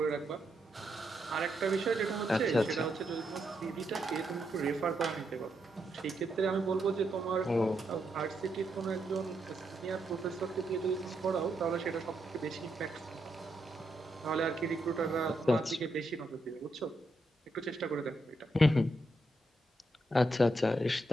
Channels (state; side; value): normal; both; correlation 0.81